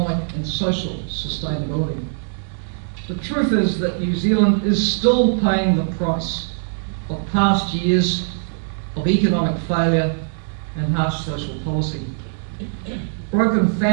and social sustainability. The truth is that New Zealand is still paying the price of past years of economic failure and harsh social policy. Broken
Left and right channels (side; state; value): left; silent; digital silence